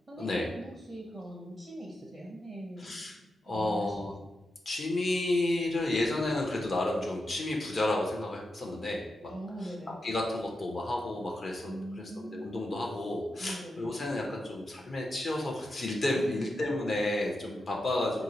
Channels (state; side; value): normal; both; correlation 0.88